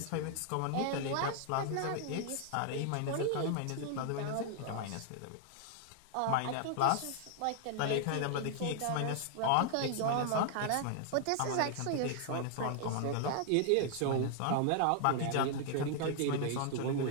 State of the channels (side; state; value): both; different; correlation 0.00